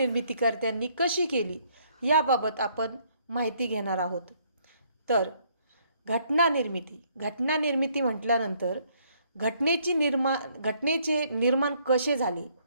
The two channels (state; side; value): inverted; both; correlation -0.67